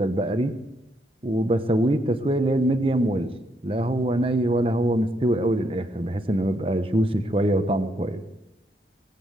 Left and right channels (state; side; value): normal; both; correlation 0.75